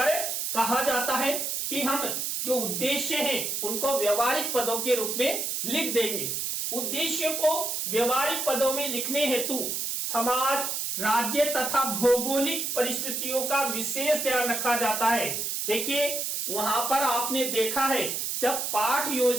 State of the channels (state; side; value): noise; right; hiss, 2 dB below the sound